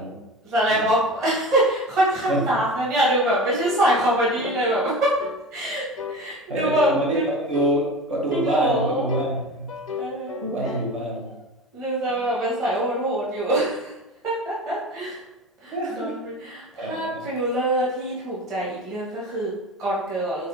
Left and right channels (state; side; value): normal; both; correlation 0.32